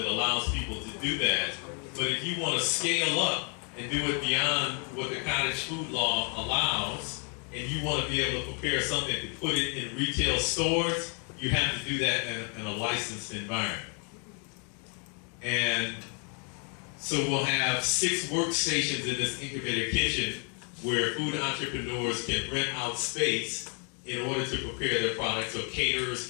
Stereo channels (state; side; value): quieter; right; 37.8 dB